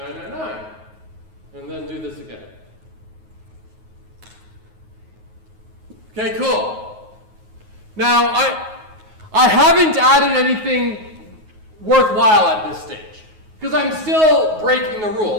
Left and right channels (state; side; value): late; left; 9.4 ms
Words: And then do this again. Okay, cool. Now, I haven't added anything worthwhile at this stage, because I'm still breaking the rule,